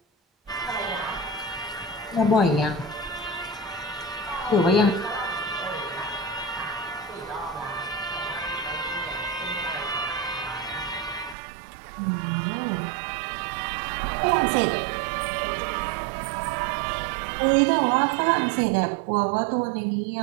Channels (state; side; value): drops out; left; at 11.4 s